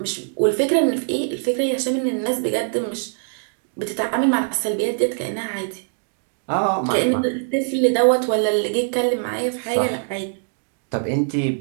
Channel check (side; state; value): left; silent; digital silence